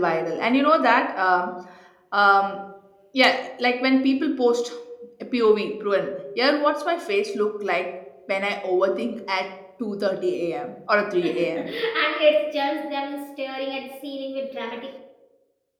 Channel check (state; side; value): identical; both; correlation 1.00